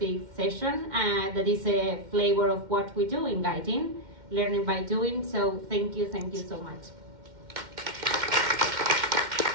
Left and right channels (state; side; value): late; left; 2.1 ms